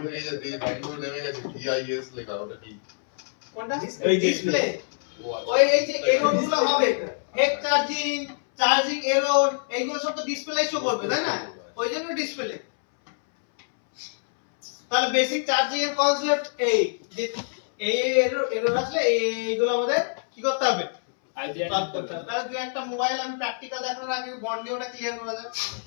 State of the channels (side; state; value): right; silent; 61 dB below the other